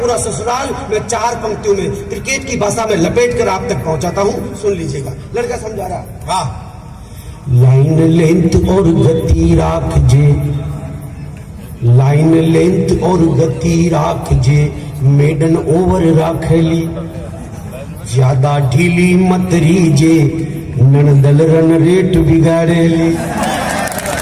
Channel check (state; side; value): identical; both; correlation 1.00